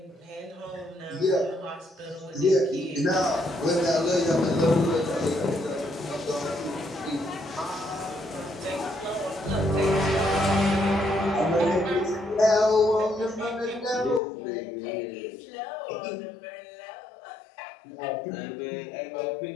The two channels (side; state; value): right; drops out; at 14.2 s